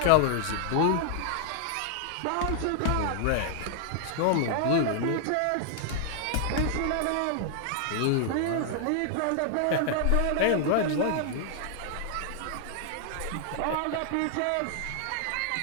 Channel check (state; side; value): different; both; correlation -0.01